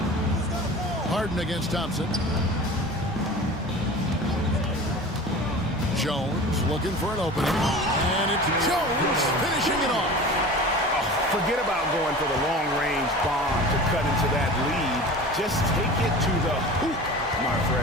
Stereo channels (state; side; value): normal; both; correlation 0.37